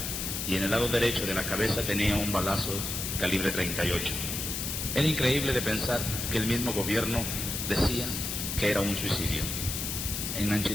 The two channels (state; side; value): noise; left; hiss, 3 dB below the sound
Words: y en el lado derecho de la cabeza tenía un balazo calibre .38. Era increíble de pensar que el mismo gobierno decía que era un suicidio. En